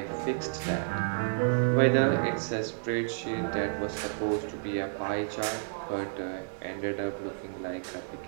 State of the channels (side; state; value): left; silent; 57 dB below the other